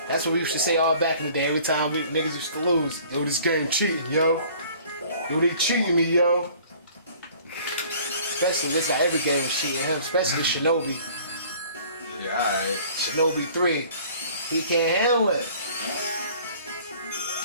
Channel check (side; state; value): both; inverted; correlation -0.51